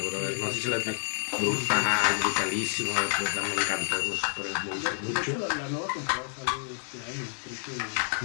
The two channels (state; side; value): silent; right; 57 dB below the other